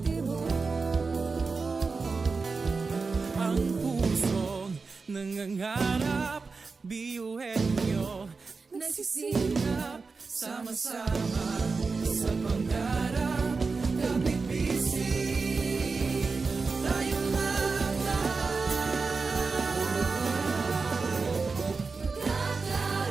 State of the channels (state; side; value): quieter; left; 4.4 dB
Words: Ang pusong nangangarap, biyuhin nyo, Nagsisikap sama-sama sa pangarap. Kapit bisig, tayong